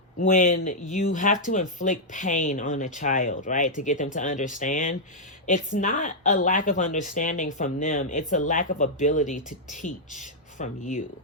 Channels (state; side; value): normal; both; correlation -0.06